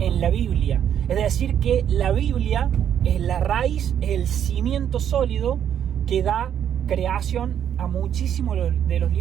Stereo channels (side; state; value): left; quieter; 9.4 dB